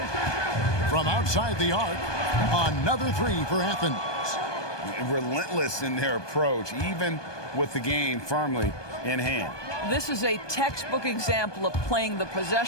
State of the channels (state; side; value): late; right; 1.2 ms